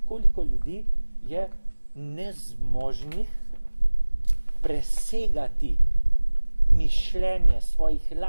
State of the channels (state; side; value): inverted; both; correlation -1.00